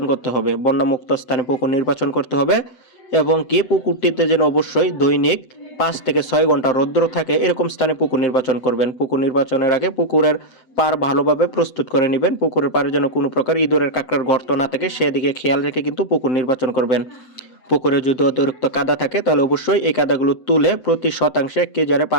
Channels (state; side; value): late; right; 7.9 ms